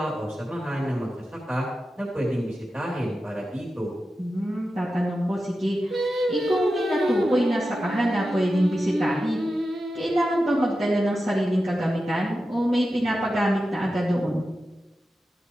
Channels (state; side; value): normal; both; correlation 0.92